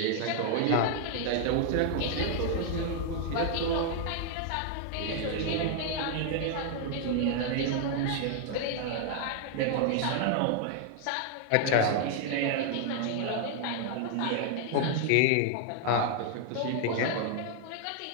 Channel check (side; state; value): both; different; correlation 0.00